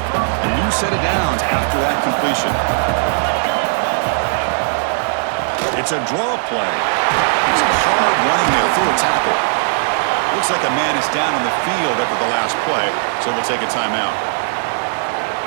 new set of downs after that completion. It's a draw play. It's hard running there through a tackle. Looks like a man is down on the field after the last play, so we'll take a timeout.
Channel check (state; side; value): silent; left; digital silence